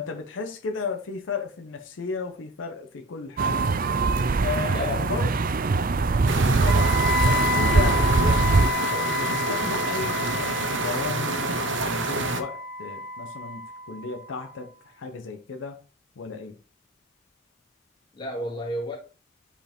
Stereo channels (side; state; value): both; normal; correlation 0.41